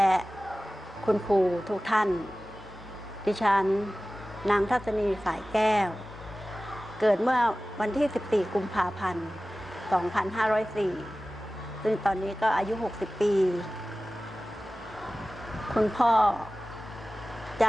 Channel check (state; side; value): normal; both; correlation 0.97